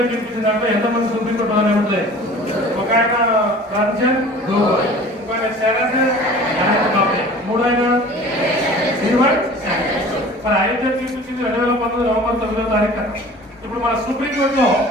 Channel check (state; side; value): normal; both; correlation 0.44